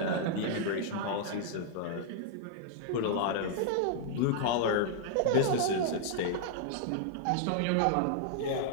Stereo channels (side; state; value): both; different; correlation -0.01